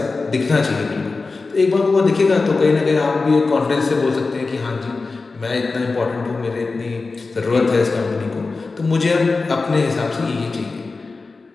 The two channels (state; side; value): quieter; right; 3.9 dB